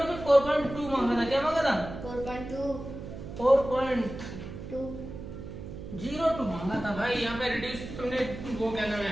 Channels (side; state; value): right; noise; hum, 10 dB below the sound